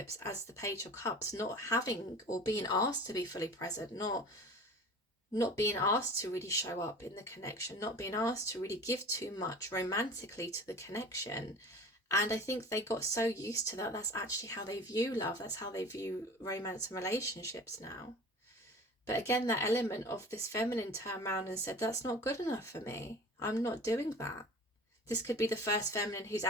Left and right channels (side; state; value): both; normal; correlation 0.39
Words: as the Page of Cups, not having or being asked to be fully present, not being asked to really show up in the connection, not being asked to really give too much romantically to the connection. And I think they got so used to that, that's actually how they view love, that's how they view romance and relationships now. But again, that element of this feminine turned around and said, that's not good enough for me. I'm not doing that. This could be the first feminine who's